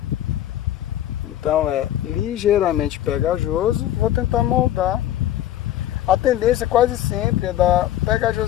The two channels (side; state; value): right; quieter; 12.6 dB